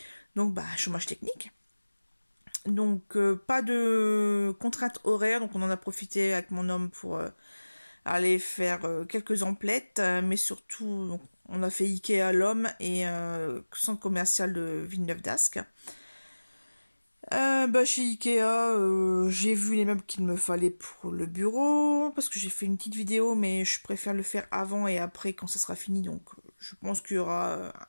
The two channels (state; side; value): inverted; both; correlation -1.00